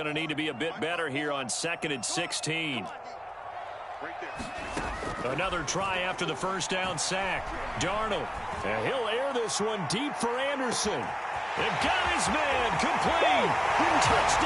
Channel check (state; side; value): identical; both; correlation 1.00